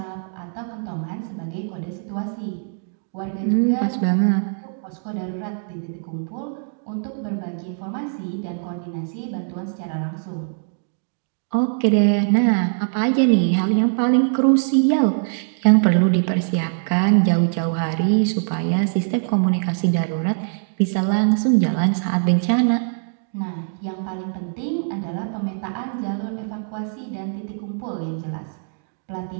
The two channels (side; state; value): left; silent; digital silence